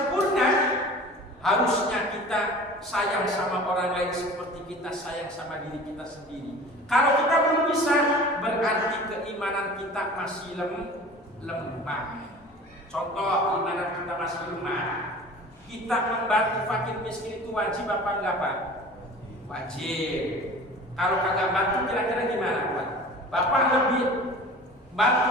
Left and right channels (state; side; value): normal; both; correlation 0.41